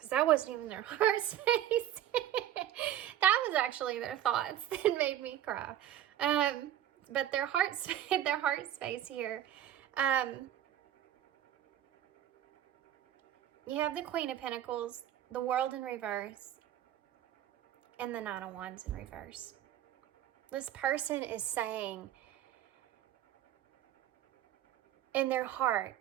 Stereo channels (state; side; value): quieter; left; 11.6 dB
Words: that wasn't even their heart space. That was actually their thoughts that made me cry. But their heart space here. You have the Queen of Pentacles, the World in reverse, and the Nine of Wands in reverse. This person is saying in their heart,